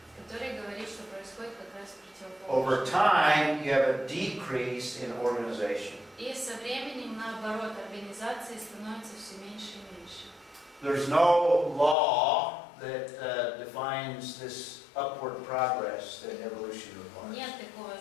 который говорит, что происходит как раз Over противоположное. time, you have a decrease in organization. И со временем, наоборот, организации становятся все меньше и меньше. There's no law that defines this upward progress that evolution requires. Нет такого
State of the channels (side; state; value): right; drops out; at 12.0 s